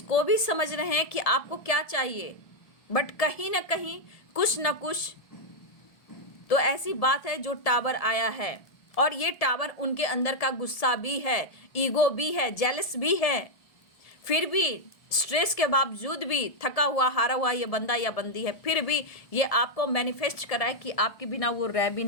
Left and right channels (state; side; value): late; right; 1.7 ms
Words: को भी समझ रहे हैं कि आपको क्या चाहिए, बट कहीं ना कहीं कुछ ना कुछ तो ऐसी बात है जो टावर आया है, और ये टावर उनके अंदर का गुस्सा भी है, ईगो भी है, जेलस भी है, फिर भी स्ट्रेस के बावजूद भी, थका हुआ हारा हुआ ये बंदा या बंदी है, फिर भी ये आपको मैनिफेस्ट कराए कि आपके बिना वो रह भी